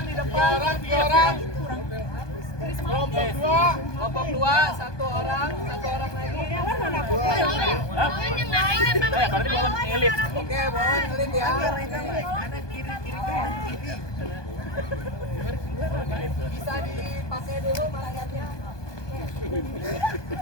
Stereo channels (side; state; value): right; late; 1.2 ms